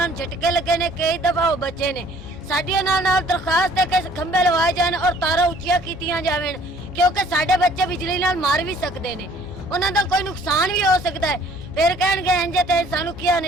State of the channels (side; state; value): both; normal; correlation 0.56